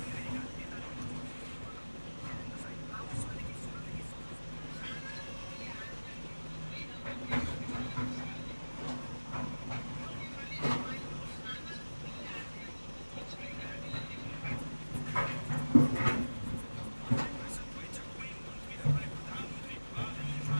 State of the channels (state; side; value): inverted; both; correlation -1.00